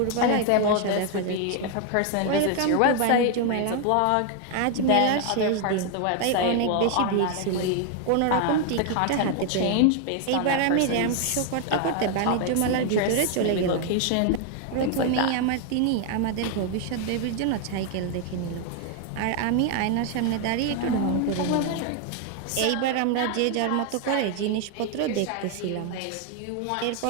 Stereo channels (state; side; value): different; both; correlation 0.00